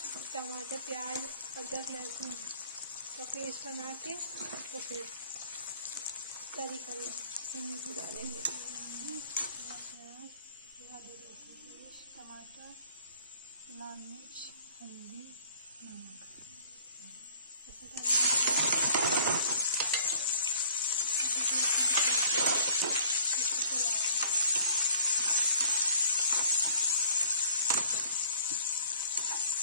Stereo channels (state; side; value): inverted; both; correlation -0.54